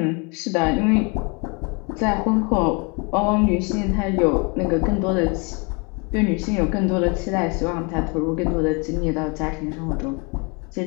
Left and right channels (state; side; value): quieter; right; 31.4 dB